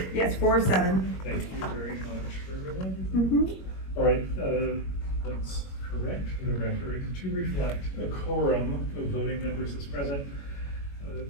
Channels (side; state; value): right; late; 21 ms